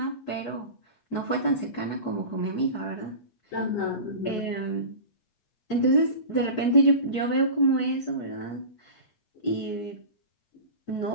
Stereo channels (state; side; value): late; right; 8.4 ms